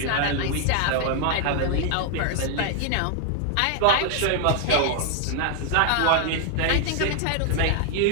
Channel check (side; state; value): both; different; correlation 0.00